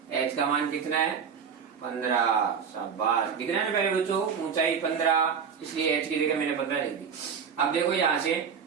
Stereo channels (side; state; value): left; quieter; 6.8 dB